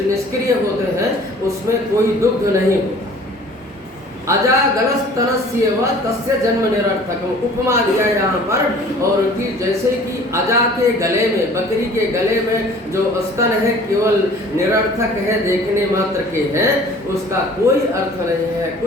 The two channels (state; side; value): normal; both; correlation 0.49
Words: निष्क्रिय होते हैं, उसमें कोई दुग्ध नहीं होता। अजागलस्तनस्येव तस्य जन्म निरर्थकम, उपमा दिया यहाँ पर। और कि जैसे कि अजा के गले में, बकरी के गले में जो स्तन है केवल निरर्थक है, देखने मात्र के हैं, उसका कोई अर्थ नहीं है,